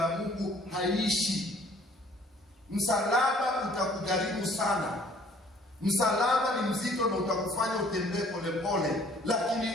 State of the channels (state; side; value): normal; both; correlation 0.57